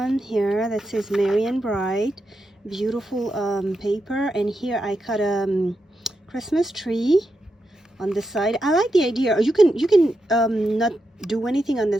here that says Merry and Bright, beautiful paper. And here I cut a Christmas tree on the side. I like the idea. You can not do anything on the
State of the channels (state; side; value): normal; both; correlation 0.86